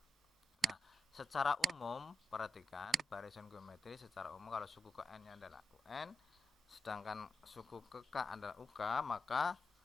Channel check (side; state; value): both; normal; correlation 0.87